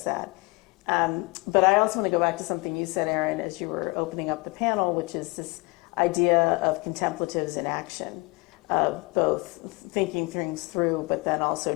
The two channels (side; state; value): right; quieter; 26.2 dB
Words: that. But I also want to go back to something you said, Aaron, as you were opening up the panel, which is this idea of contemplatives in action, of both thinking things through, but then also